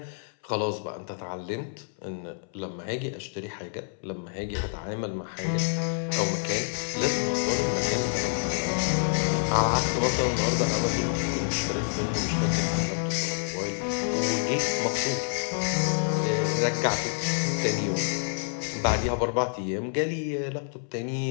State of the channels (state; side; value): silent; right; 60 dB below the other